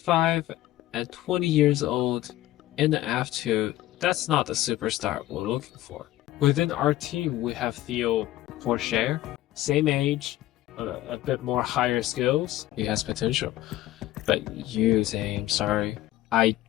and 20 years old in the F2. That's not the superstar we're looking for. Within our team, we have Theo Porcher, same age, a bit more higher skills. He has potential. But you, Zane, I'm sorry, I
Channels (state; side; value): quieter; right; 15.0 dB